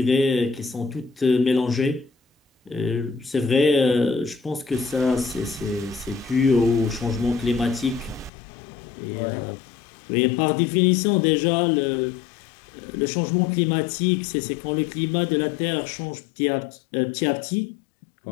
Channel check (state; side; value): drops out; right; at 8.3 s